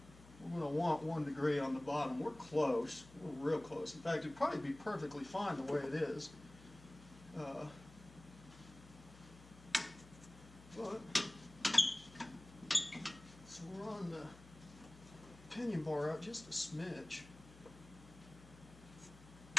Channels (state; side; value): noise; left; hum, 20 dB below the sound